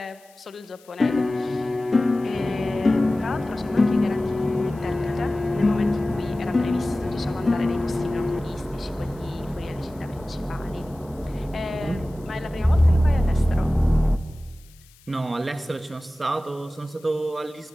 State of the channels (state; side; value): noise; left; hiss, 28 dB below the sound